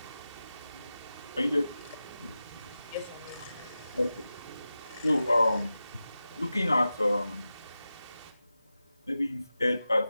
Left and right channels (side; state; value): both; inverted; correlation -0.93